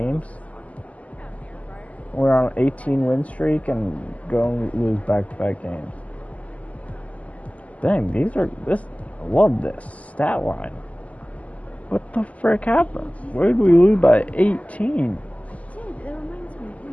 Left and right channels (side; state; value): right; late; 0.071 ms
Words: We're on an 18 win streak and go and lose back-to-back games. Dang, I love this stat line. What the frick happened? Where did we lose by 18?